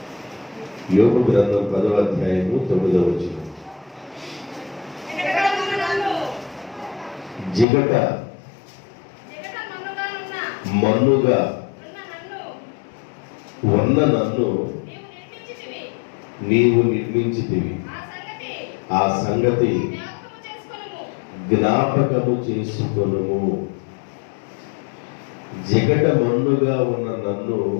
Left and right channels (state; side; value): drops out; right; at 7.7 s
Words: యోబు గ్రంథం 10వ అధ్యాయము 9వ వచనం. జిగట మన్నుగా ఉన్న నన్ను నీవు నిర్మించితివి, ఆ సంగతి జ్ఞాపకము చేసుకొనుము. జిగట మన్నుగా ఉన్న నన్ను